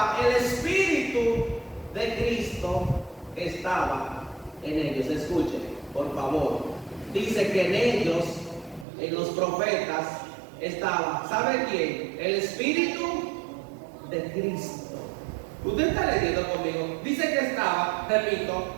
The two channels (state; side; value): drops out; left; at 8.8 s